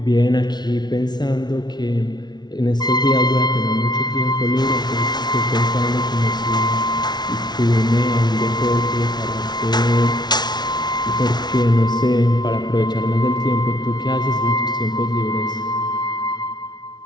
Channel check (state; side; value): late; right; 0.20 ms